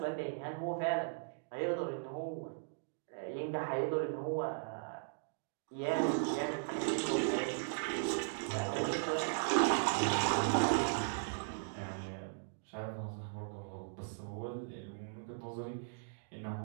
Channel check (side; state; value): left; silent; digital silence